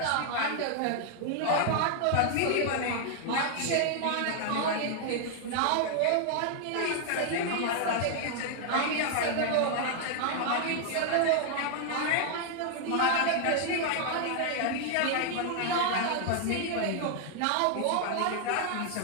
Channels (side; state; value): both; different; correlation 0.00